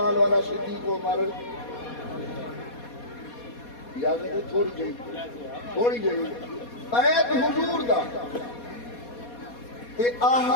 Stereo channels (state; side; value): late; right; 4.2 ms